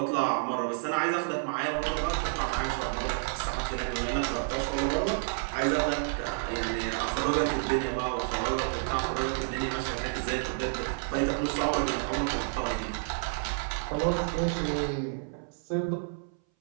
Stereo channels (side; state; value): left; silent; 58 dB below the other